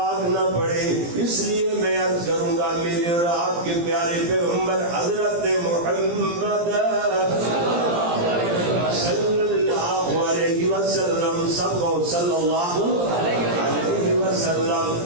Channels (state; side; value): late; left; 17 ms